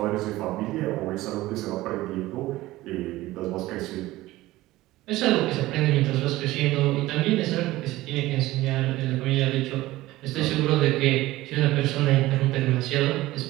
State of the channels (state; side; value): quieter; left; 17.5 dB